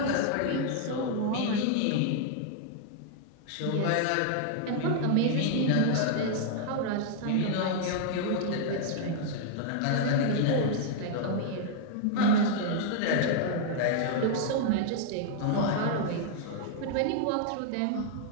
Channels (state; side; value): different; both; correlation 0.00